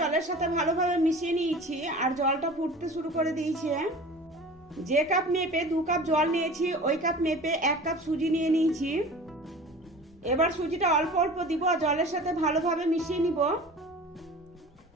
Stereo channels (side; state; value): both; normal; correlation 0.40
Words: সাথে ভালোভাবে মিশিয়ে নিয়েছি আর জলটা ফুটতে শুরু করে দিয়েছে। যে কাপ মেপে 2 কাপ জল নিয়েছি ওই কাপ মেপে 1 কাপ সুজি নিয়ে নিয়েছি। এবার সুজিটা অল্প অল্প দিব আর জলের সাথে ভালোভাবে মিশিয়ে নিব।